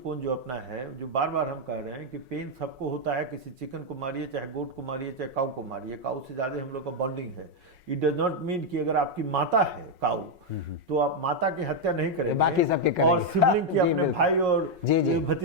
जो अपना है, जो बार बार हम कह रहे हैं कि पेन सबको होता है, किसी चिकन को मारिए, चाहे गोट को मारिए, चाहे काऊ को मारिए, काऊ से ज्यादा हम लोग का बॉन्डिंग है। इट डज नॉट मीन कि अगर आपकी माता है काऊ तो आप माता की हत्या नहीं करेंगे, बाकी सबके करेंगे, और सिबलिंग की अपने भाई और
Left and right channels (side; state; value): left; late; 5.5 ms